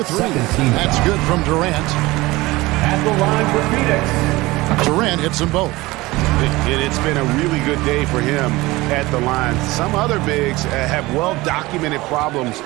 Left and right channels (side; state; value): left; quieter; 20.3 dB